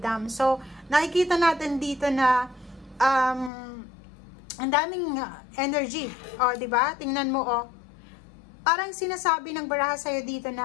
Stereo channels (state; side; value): drops out; right; at 3.5 s